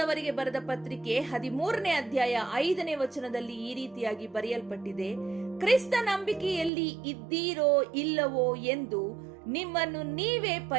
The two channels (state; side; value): drops out; left; at 6.7 s